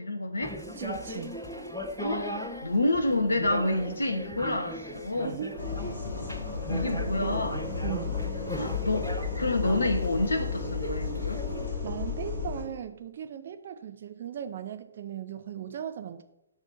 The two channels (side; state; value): both; inverted; correlation -0.68